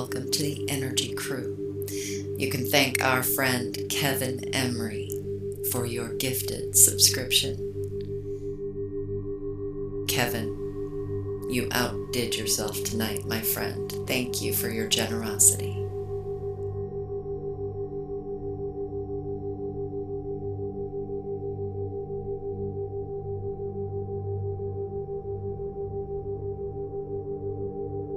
to the Energy Crew. You can thank our friend Kevin Emery for your gifted subscription. Kevin, you outdid yourself tonight, my friend. Thank you for your generosity.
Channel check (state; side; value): identical; both; correlation 1.00